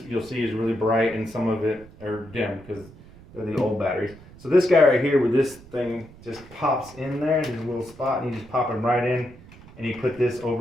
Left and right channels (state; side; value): noise; right; rumble, 21 dB below the sound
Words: you'll see is really bright and some of it are dim because they're the old batteries. So this guy right here with this thing just pops in there. There's a little spot and you just pop him right in and you put this